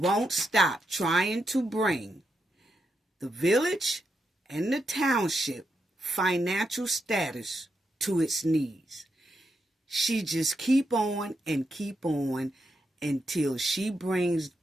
stop trying to bring the village and the township financial status to its knees. She just keep on until she brings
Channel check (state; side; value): normal; both; correlation 0.83